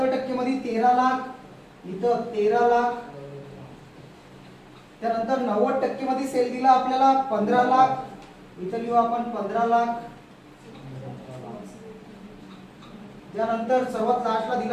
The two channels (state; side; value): identical; both; correlation 1.00